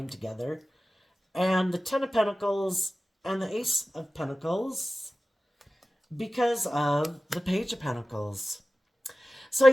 together. And the Ten of Pentacles and the Ace of Pentacles because of the Page of Pentacles. So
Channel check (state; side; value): normal; both; correlation 0.96